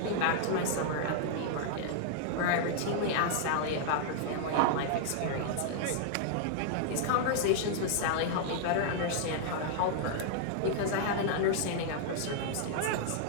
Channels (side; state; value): both; different; correlation -0.01